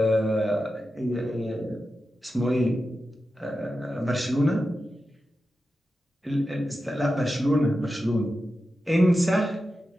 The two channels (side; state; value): both; normal; correlation 0.91